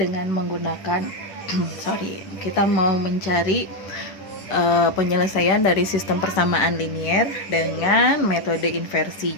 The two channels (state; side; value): late; right; 10 ms